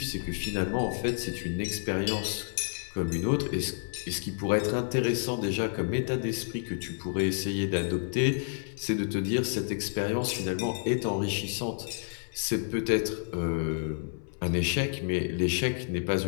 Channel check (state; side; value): silent; right; 58 dB below the other